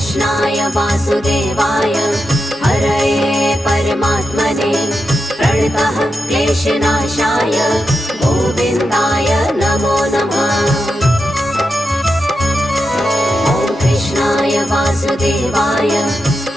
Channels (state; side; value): normal; both; correlation 0.88